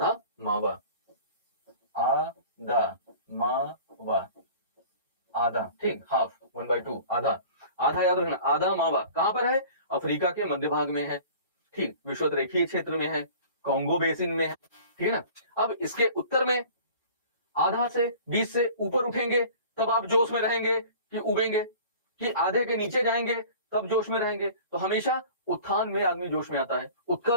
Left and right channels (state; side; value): inverted; both; correlation -0.44